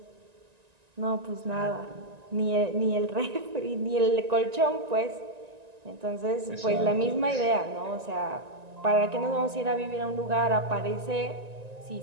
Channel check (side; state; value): left; late; 1.9 ms